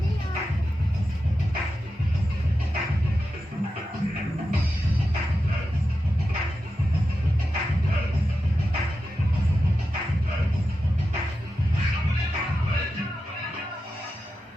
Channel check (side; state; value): both; normal; correlation 0.90